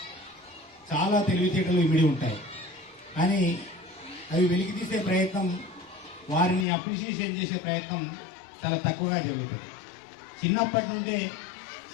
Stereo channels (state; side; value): drops out; right; at 6.7 s